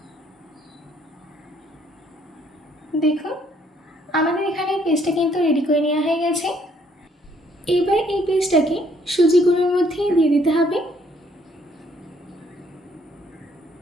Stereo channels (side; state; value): both; normal; correlation 0.66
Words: দেখুন আমাদের এখানে পেস্টটা কিন্তু রেডি করে নেওয়া হয়ে গেছে। এবার এই পেস্টটাকে সুজি গুঁড়োর মধ্যে দিয়ে দিতে হবে।